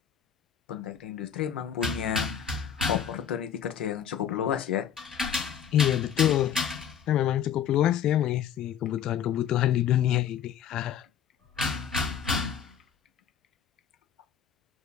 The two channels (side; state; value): right; quieter; 8.8 dB